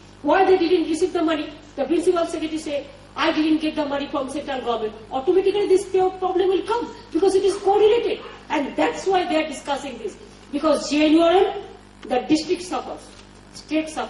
why they didn't receive the money, the principal secretary say, I didn't get the money from central government, automatically this problem will come because it is correlated. And that's why they are discussing this. Because JNURM, the district suffers, state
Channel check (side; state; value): both; identical; correlation 1.00